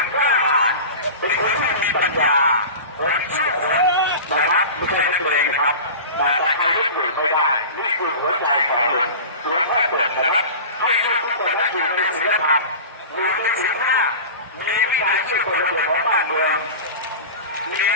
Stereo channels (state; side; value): inverted; both; correlation -0.33